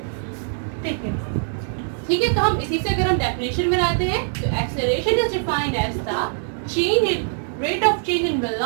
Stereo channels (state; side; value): silent; left; digital silence